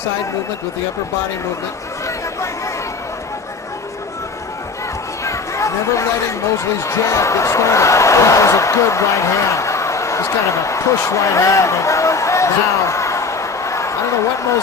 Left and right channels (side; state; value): right; quieter; 4.4 dB